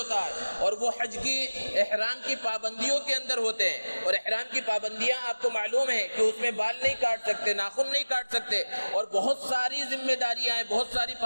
ہے، اور وہ حج کی احرام کی پابندیوں کے اندر ہوتے ہیں، اور احرام کی پابندیاں آپ کو معلوم ہے کہ اس میں بال نہیں کاٹ سکتے، ناخن نہیں کاٹ سکتے، اور بہت ساری ذمہ داریاں ہیں، بہت ساری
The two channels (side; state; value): both; inverted; correlation -1.00